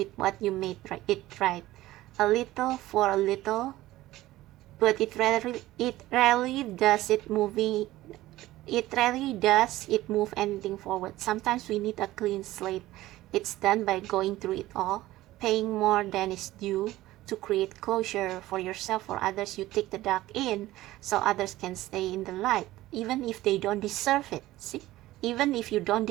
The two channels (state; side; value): quieter; left; 16.5 dB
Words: what you made it right. A little for a little, but it rarely does it move anything forward. Sometimes we need a clean slate. It's done by going through it all, paying more than is due to create closure for yourself or others. You take the dark in so others can stay in the light, even if they don't deserve it. See, even if you don't